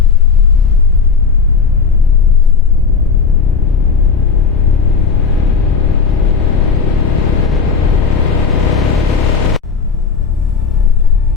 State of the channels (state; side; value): quieter; right; 5.3 dB